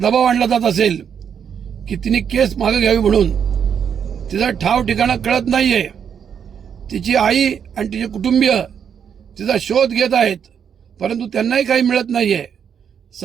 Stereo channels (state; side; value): quieter; left; 7.8 dB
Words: आणला जात असेल की तिने केस मागे घ्यावी म्हणून। तिचा ठाव ठिकाणा कळत नाहीये। तिची आई आणि तिचे कुटुंबीय तिचा शोध घेत आहेत, परंतु त्यांनाही काही मिळत नाहीये।